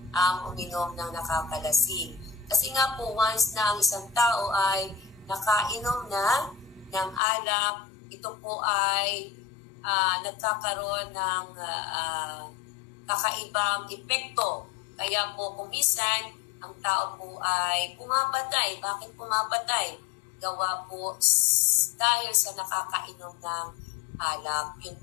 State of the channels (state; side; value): drops out; right; at 7.2 s